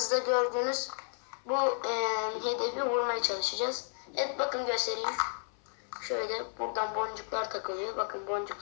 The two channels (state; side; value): silent; right; 56 dB below the other